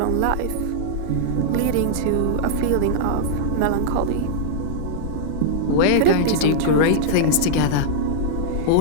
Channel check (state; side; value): different; both; correlation -0.01